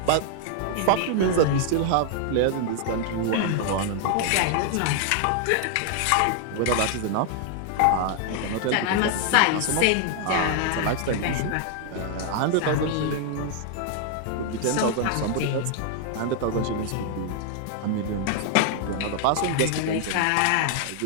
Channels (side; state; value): both; different; correlation 0.00